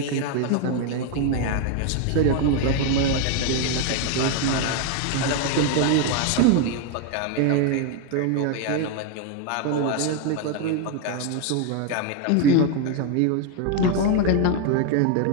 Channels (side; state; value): both; different; correlation 0.01